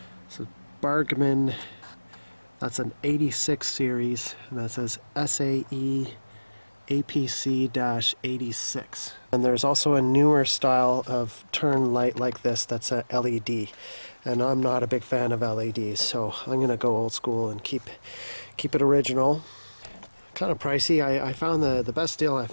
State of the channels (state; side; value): inverted; both; correlation -1.00